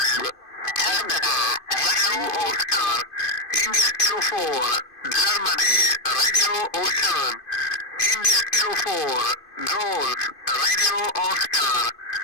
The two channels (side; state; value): right; late; 2.5 ms